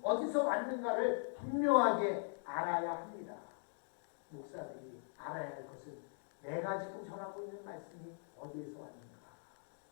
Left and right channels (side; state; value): right; silent; digital silence